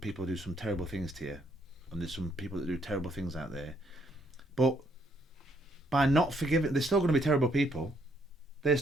who do some terrible things to you, and there's some people that do terrible things out there. But by not forgiving, they're still going to be terrible people. They're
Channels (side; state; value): both; normal; correlation 0.70